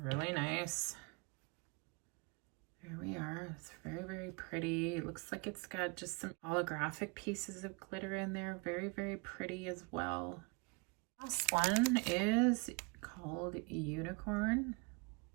nice. There we are. It's very, very pretty. It looks like it's got just some holographic pieces of glitter in there. Very, very pretty as well. Last one is called Unicorn.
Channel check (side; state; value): left; quieter; 29.8 dB